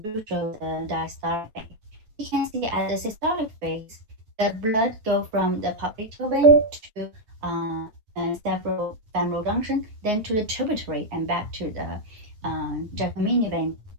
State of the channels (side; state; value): left; late; 9.4 ms